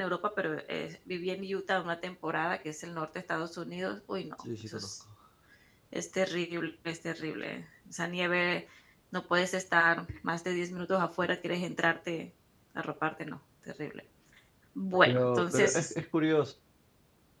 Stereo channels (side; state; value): both; identical; correlation 1.00